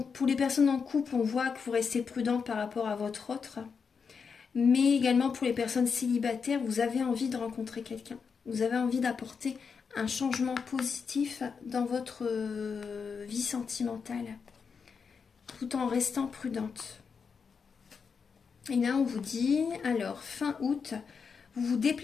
pour les personnes en couple, on voit que vous restez prudente par rapport à votre autre. Mais également pour les personnes célibataires, vous avez envie de rencontrer quelqu'un. Vous avez envie d'apporter un changement positif dans votre vie sentimentale, tout en restant prudente. Et là, on vous dit, alors, fin août, vous vous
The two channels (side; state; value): right; quieter; 5.8 dB